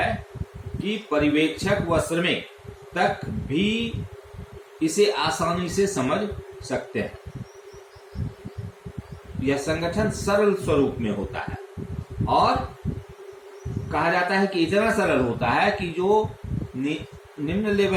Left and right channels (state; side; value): identical; both; correlation 1.00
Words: कि पर्यवेक्षक व श्रमिक तक भी इसे आसानी से समझ सकते हैं। यह संगठन सरल स्वरूप में होता है और कहा जाता है कि इतना सरल होता है कि जो निम्न